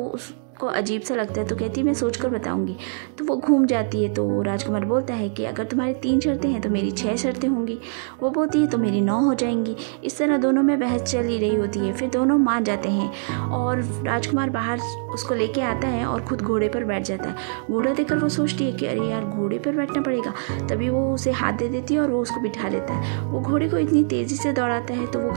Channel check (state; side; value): silent; left; 63 dB below the other